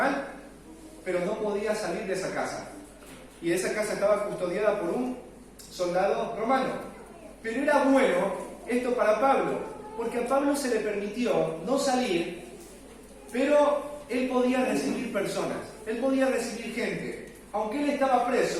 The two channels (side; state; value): both; identical; correlation 1.00